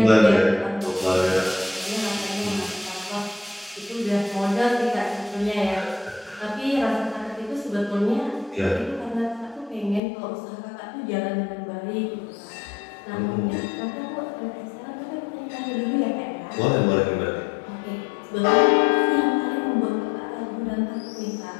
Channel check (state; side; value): drops out; right; at 10.0 s